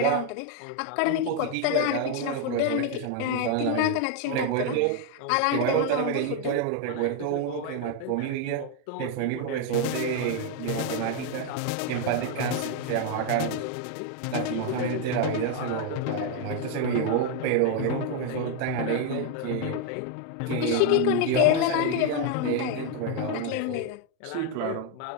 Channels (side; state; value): both; different; correlation 0.01